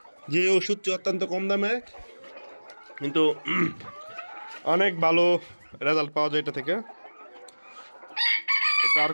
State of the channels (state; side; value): inverted; both; correlation -1.00